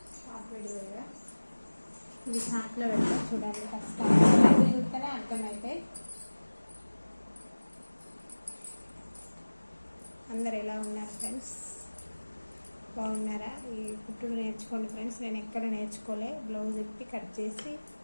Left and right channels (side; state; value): both; inverted; correlation -1.00